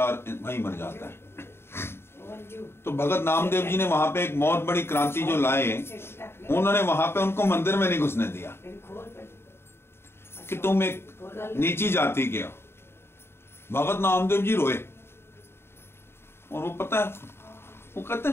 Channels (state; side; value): late; right; 0.12 ms